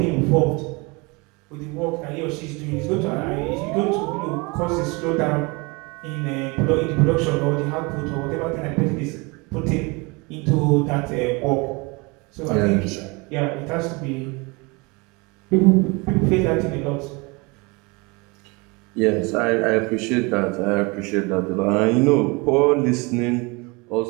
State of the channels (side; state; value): left; quieter; 27.5 dB